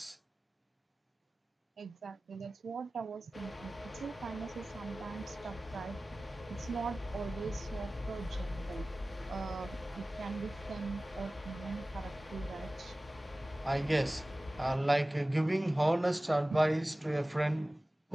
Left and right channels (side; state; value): both; normal; correlation 0.97